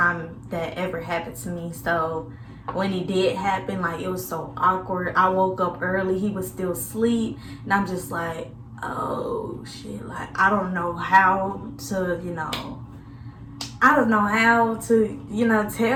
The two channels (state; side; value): identical; both; correlation 1.00